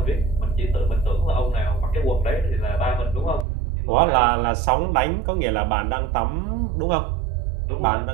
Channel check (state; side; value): drops out; left; at 3.5 s